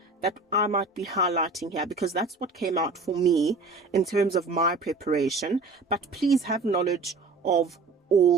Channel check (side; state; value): left; quieter; 3.8 dB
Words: that I might be highlighting here, because that's what came out for me in terms of my preparation. But please have knowledge of